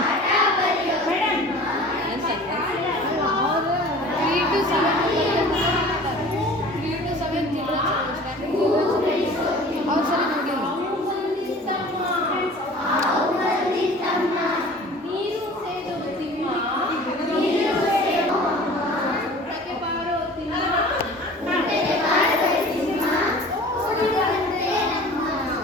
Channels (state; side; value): normal; both; correlation 0.44